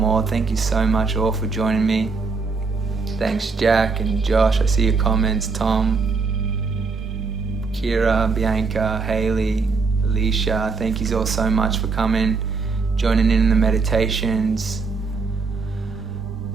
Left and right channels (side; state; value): left; quieter; 4.5 dB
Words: Thank you so much all for joining me. Thanks Jack and Josh, I see your comments. Tom, Kira, Bianca, Haley, Alicia, thank you all so much for coming, joining in the meditations.